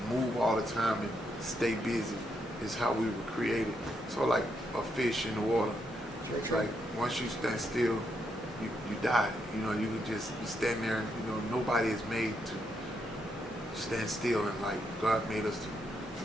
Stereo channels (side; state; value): both; normal; correlation 0.79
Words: move all the time and stay busy is how we were created. So like a fish in the water, True. like once you stand still, you die. You know, you stand there. You know, nobody is made to stand still, and like God made us to,